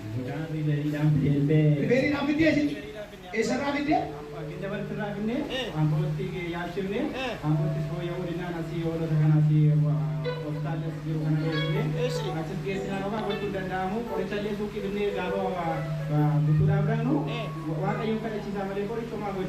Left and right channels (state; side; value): identical; both; correlation 1.00